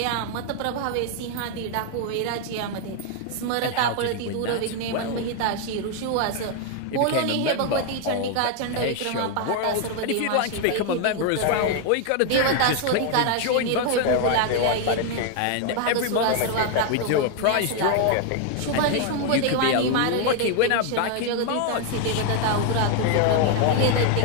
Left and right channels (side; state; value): both; different; correlation 0.01